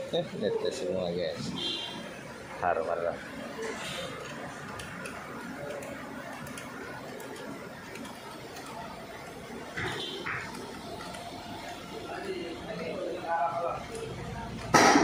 Netes semua guys. Harum marah.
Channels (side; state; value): both; identical; correlation 1.00